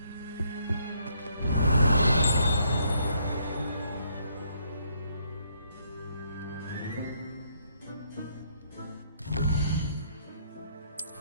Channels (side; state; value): both; inverted; correlation -0.71